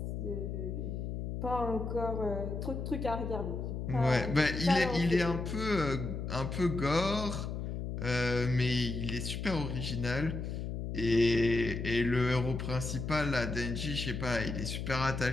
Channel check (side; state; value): left; noise; hum, 4 dB below the sound